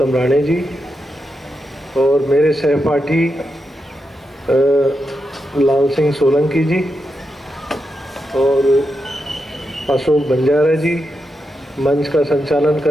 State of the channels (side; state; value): both; normal; correlation 0.86